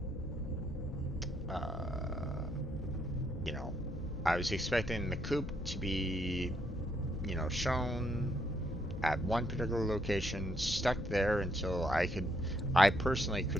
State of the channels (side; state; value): both; normal; correlation 0.74